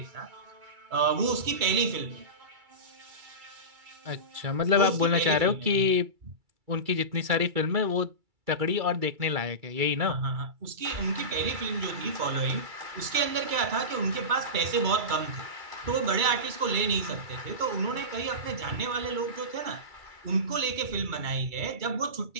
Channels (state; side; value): late; left; 2.3 ms